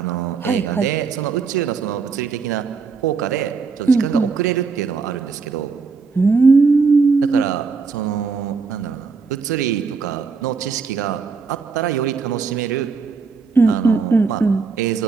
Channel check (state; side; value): quieter; left; 4.9 dB